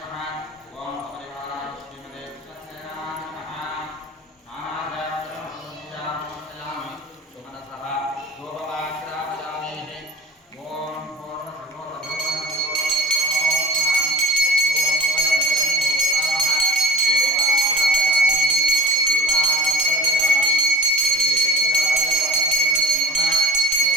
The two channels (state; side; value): normal; both; correlation 0.42